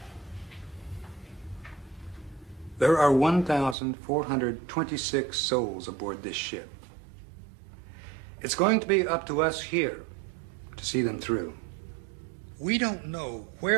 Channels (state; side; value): drops out; left; at 3.8 s